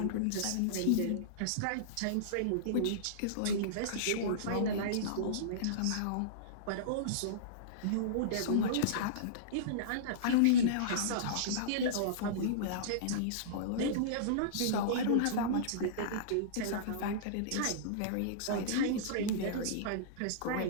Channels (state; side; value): different; both; correlation -0.03